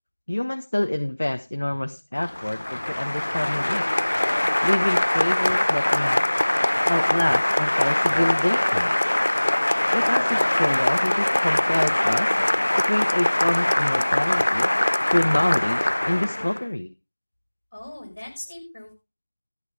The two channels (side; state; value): both; inverted; correlation -1.00